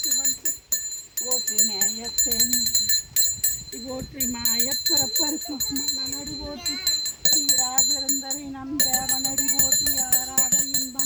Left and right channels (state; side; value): identical; both; correlation 1.00